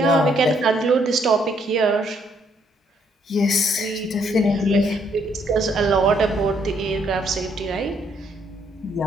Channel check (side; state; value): both; normal; correlation 0.70